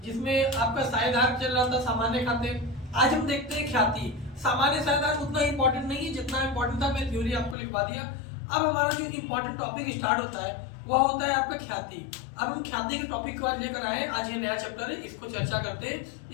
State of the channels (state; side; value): drops out; right; at 7.6 s